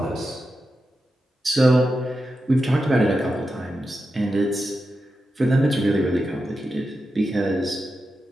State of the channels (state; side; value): normal; both; correlation 0.89